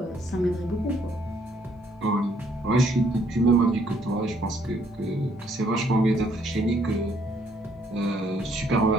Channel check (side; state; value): both; normal; correlation 0.67